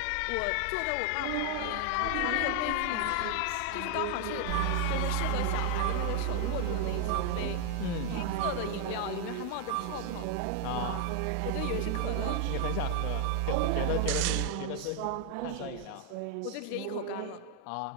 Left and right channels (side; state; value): both; different; correlation 0.00